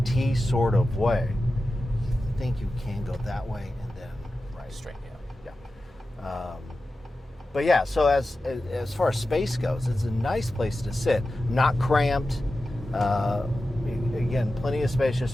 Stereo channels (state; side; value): normal; both; correlation 0.93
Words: sort of way. I think you can go that way and then right. Straight, yeah. Yeah. But yeah, so as far as space goes, it's a nice place to sit. Not cramped. Again, plenty of space just